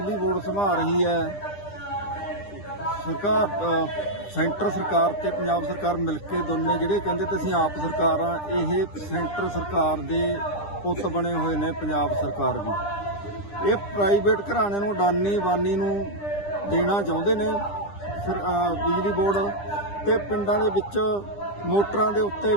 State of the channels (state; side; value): late; right; 10 ms